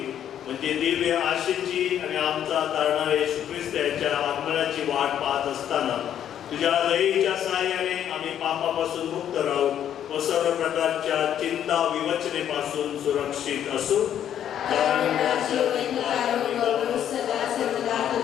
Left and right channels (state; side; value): quieter; right; 10.0 dB